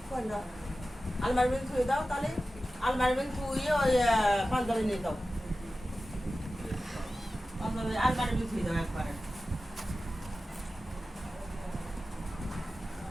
কোন না আলমারি में থুই দাও তাহলে আলমারি में থুই ওই পাঞ্জাবি নিয়ে দাও পাঞ্জাবি আলমারি में থুই দাও একবারে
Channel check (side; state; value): both; normal; correlation 0.94